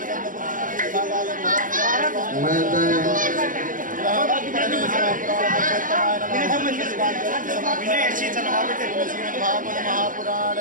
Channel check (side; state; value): left; late; 0.39 ms